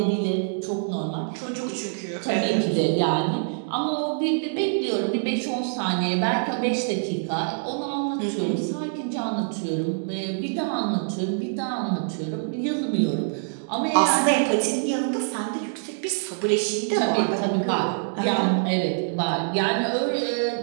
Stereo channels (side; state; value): left; silent; digital silence